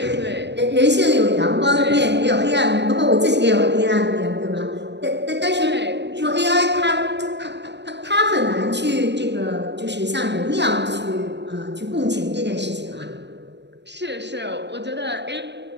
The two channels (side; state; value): left; late; 0.51 ms